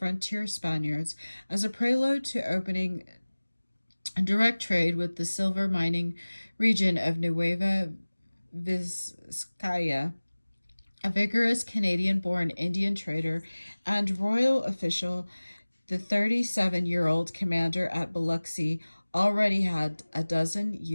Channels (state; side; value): inverted; both; correlation -1.00